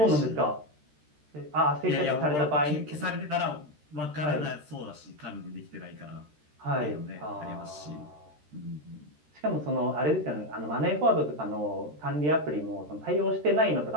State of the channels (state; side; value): late; left; 13 ms